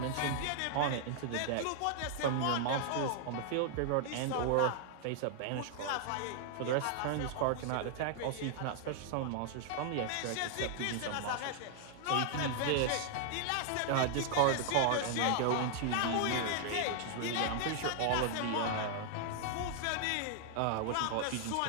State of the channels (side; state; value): both; different; correlation 0.00